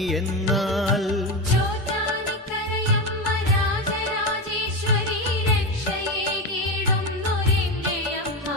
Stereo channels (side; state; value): both; normal; correlation 0.17